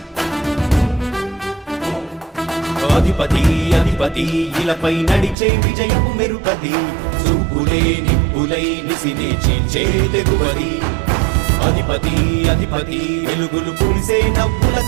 అధిపతి అధిపతి ఇలపై నడిచే విజయము మెరుపది చూపులే నిప్పులై నిసినే చీల్చే తెగువది అధిపతి అధిపతి వెలుగులు పులిసే నవ్వుల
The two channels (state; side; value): drops out; left; at 5.4 s